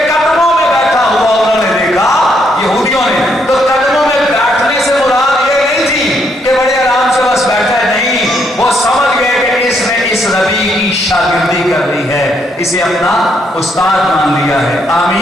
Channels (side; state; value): both; normal; correlation 0.74